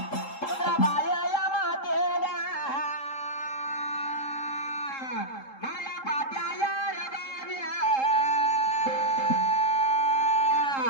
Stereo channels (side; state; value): right; late; 3.7 ms